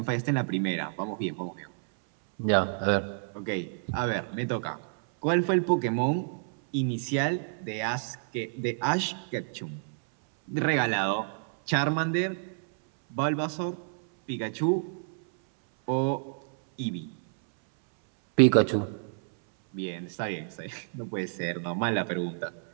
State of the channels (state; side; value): silent; left; 59 dB below the other